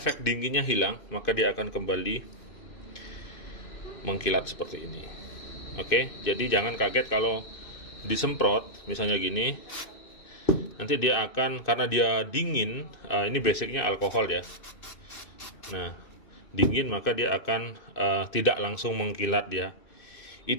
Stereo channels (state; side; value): late; right; 2.6 ms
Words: dinginnya hilang, maka dia akan kembali mengkilat seperti ini. Oke, jadi jangan kaget kalau disemprot, misalnya gini. Nanti dia akan, karena dia dingin, ini basicnya alkohol ya. Nah, dingin maka dia akan tidak langsung mengkilat dia.